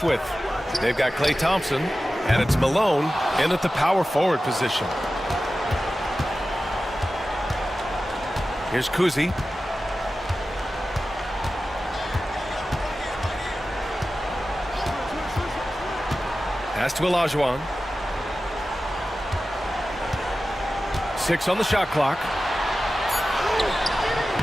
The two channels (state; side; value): normal; both; correlation 0.94